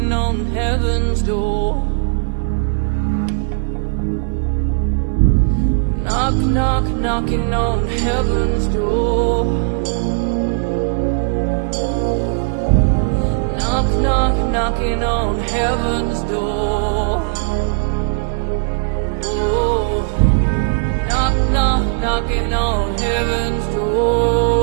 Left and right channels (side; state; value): left; silent; 56 dB below the other